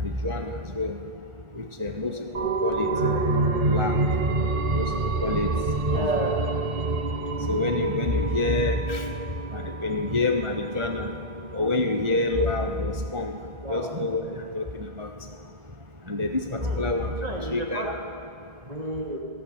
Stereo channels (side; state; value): left; late; 1.4 ms